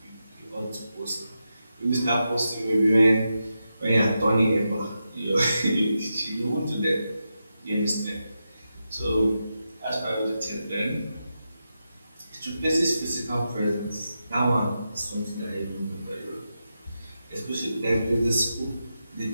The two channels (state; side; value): inverted; both; correlation -0.88